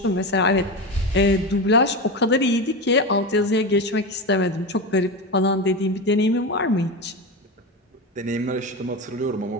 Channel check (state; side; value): normal; both; correlation 0.20